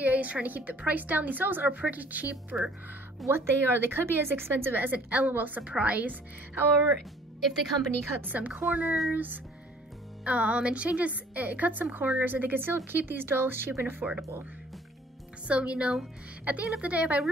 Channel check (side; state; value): both; normal; correlation 0.55